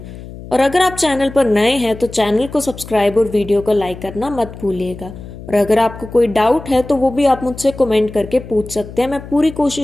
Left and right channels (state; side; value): noise; left; hum, 14 dB below the sound